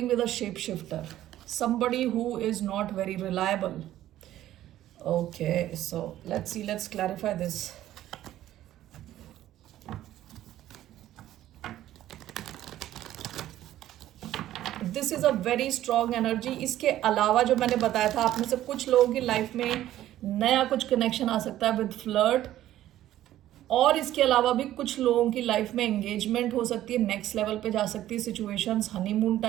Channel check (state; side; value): quieter; left; 13.3 dB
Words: with a shape shifter, somebody who is not very reliable. Okay, so let's clarify this. This is a very strong energy. इसके अलावा जो मैंने बताया था, आप में से कुछ लोगों की लाइफ में नया कुछ कनेक्शन आ सकता है विद फ्लर्ट, और इसके अलावा भी कुछ लोगों की लाइफ में एंगेजमेंट हो सकती है, नेक्स्ट लेवल पे जा सकती है सिचुएशंस, हनीमून